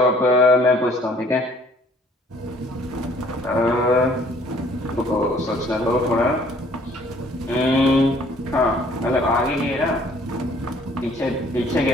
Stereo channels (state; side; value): normal; both; correlation 0.58